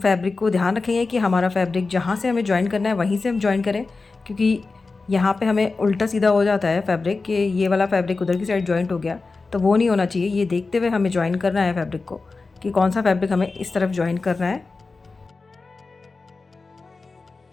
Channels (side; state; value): right; quieter; 3.9 dB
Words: को ध्यान रखेंगे कि हमारा फैब्रिक जहाँ से हमें ज्वाइन करना है वहीं से हम ज्वाइन करें, क्योंकि यहाँ पे हमें उल्टा सीधा हो जाता है फैब्रिक कि ये वाला फैब्रिक उधर की साइड ज्वाइंट हो गया, तो वो नहीं होना चाहिए। ये देखते हुए हमें ज्वाइन करना है फैब्रिक को कि कौन सा फैब्रिक हमें इस तरफ ज्वाइन करना है।